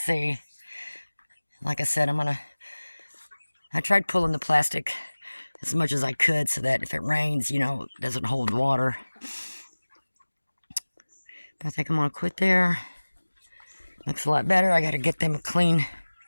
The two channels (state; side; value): inverted; both; correlation -1.00